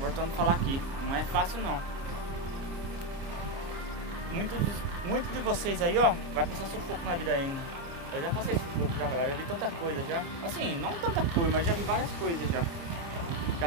a falar aqui. Não é fácil, não. Muitos de vocês aí, ó, vai passar sufoco na vida ainda. Eu já passei sufoco já, galera. Já vi tanta coisa já. Assim, não tanta coisa, mas já vi várias coisas já.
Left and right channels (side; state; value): left; late; 29 ms